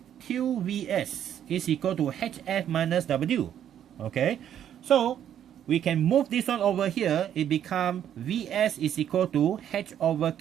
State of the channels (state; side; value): quieter; left; 10.1 dB